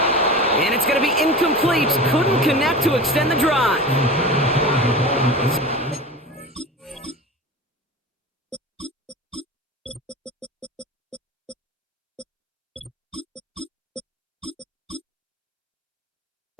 And it's going to be incomplete. Couldn't connect to extend the drive.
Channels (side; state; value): both; normal; correlation 0.32